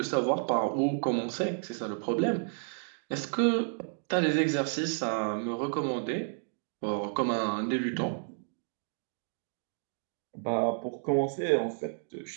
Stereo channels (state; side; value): silent; left; digital silence